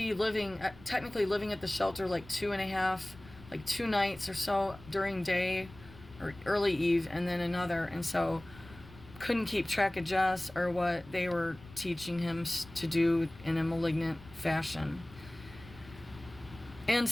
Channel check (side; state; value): left; noise; rumble, 20 dB below the sound